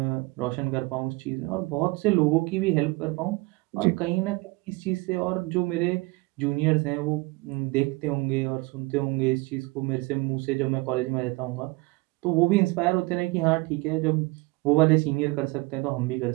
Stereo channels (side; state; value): left; quieter; 24.3 dB